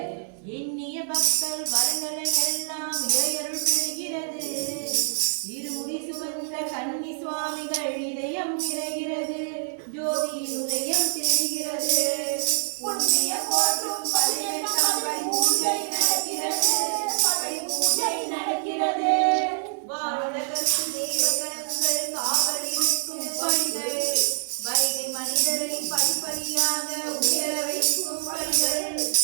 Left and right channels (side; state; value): left; silent; digital silence